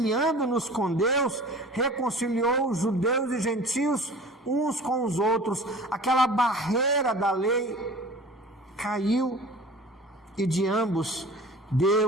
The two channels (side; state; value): both; normal; correlation 0.42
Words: com Deus, reconciliou os judeus e gentios uns com os outros. Aquela barreira da lei caiu, e de ambos